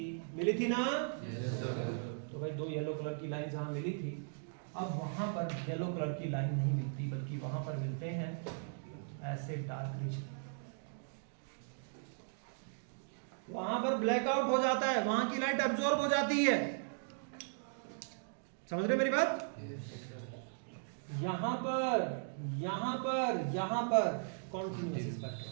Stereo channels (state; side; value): silent; left; digital silence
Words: थी ना? तो भाई 2 येलो कलर की लाइन जहां मिली थी, अब वहां पर येलो कलर की लाइन नहीं मिलती, बल्कि वहां पर मिलते हैं ऐसे डार्क रीजन। वहां पर ब्लैकआउट हो जाता है, वहां की लाइट अब्सॉर्ब हो जाती है। समझ रहे मेरी बात? यहां पर कॉन्टिन्यूअस